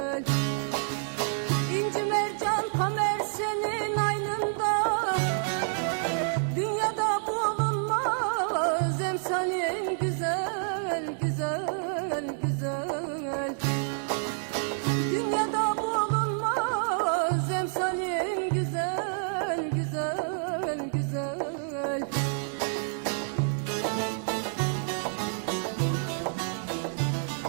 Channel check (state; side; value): silent; left; digital silence